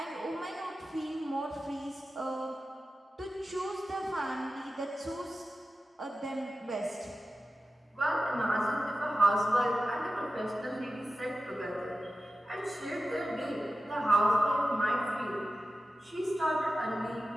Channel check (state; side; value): normal; both; correlation 0.93